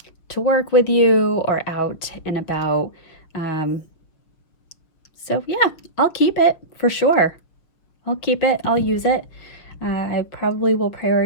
to work with you or out and about. So yeah, I'll keep it for sure. I'll keep it. I'll use it. I probably will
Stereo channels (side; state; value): right; late; 6.3 ms